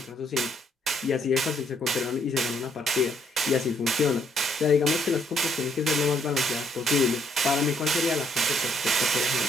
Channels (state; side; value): normal; both; correlation 0.69